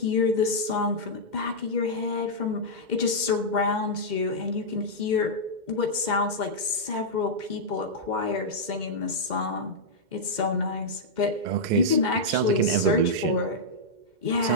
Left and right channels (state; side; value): late; left; 2.1 ms